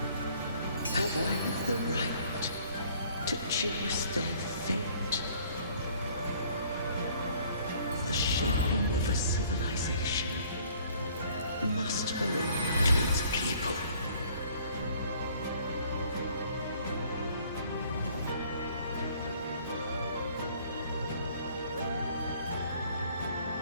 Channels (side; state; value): both; inverted; correlation -0.57